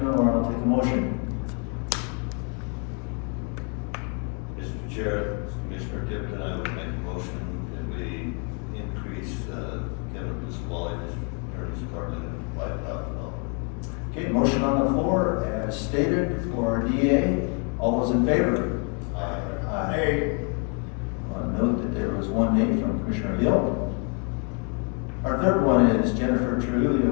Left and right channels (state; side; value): quieter; right; 37.5 dB